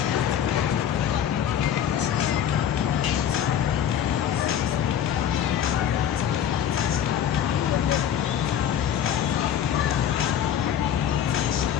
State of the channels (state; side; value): quieter; right; 9.4 dB